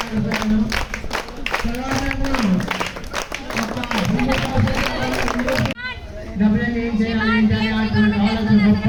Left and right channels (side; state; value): both; identical; correlation 1.00